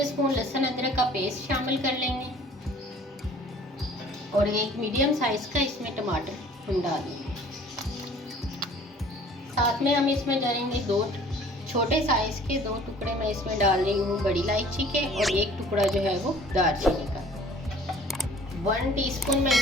लहसुन अदरक का पेस्ट शामिल कर लेंगे और एक मीडियम साइज का इसमें टमाटर हम डालेंगे। साथ में हम इसमें डालेंगे 2 छोटे साइज के 2 टुकड़े मैं इसमें डाल रही हूँ बड़ी इलायची के और 1 टुकड़ा जो है वो दालचीनी का। 1 टीस्पून मैं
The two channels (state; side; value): normal; both; correlation 0.51